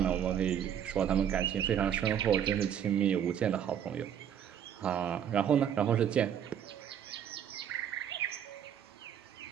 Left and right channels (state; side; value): quieter; left; 9.2 dB